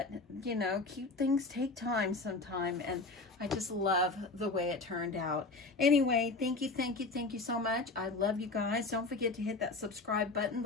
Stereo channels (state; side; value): quieter; right; 3.6 dB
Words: you know, cute things take time sometime, and I just love the way it turned out. Anyway, thank you so much. I love you guys. Don't forget to hit that subscribe button,